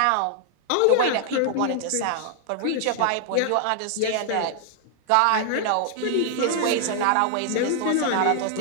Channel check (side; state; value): both; different; correlation 0.00